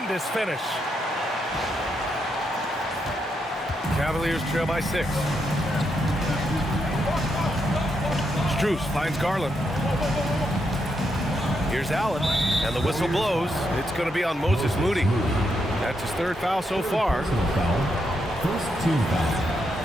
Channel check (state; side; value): normal; both; correlation 0.81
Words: finish. Cavaliers trail by 6. Strus finds Garland. Here's Allen, and the whistle blows. It's going to be on Moses Moody. That's his 3rd foul so far. First team foul.